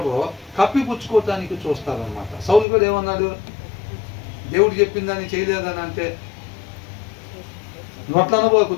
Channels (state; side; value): drops out; right; at 2.7 s